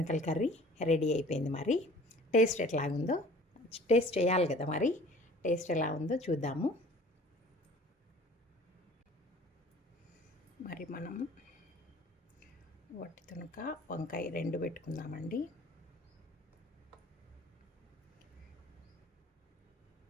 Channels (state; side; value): normal; both; correlation 0.48